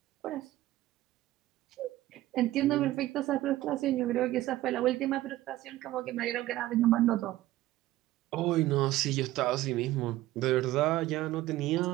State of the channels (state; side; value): quieter; left; 15.9 dB